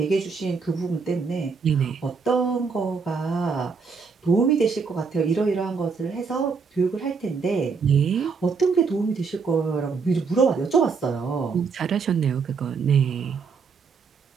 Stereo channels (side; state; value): left; quieter; 5.2 dB